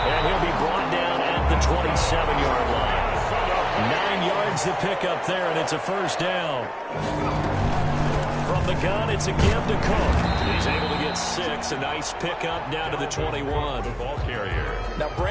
and he'll be brought down at the 27-yard line. 9 yards to pick up there, and it's a first down. From the gun, it's a give to Cook. He's able to get 6. A nice pickup down to the 21. The ball carrier. Now,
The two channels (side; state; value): both; identical; correlation 1.00